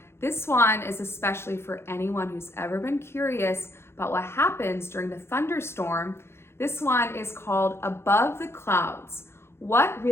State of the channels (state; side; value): late; right; 0.12 ms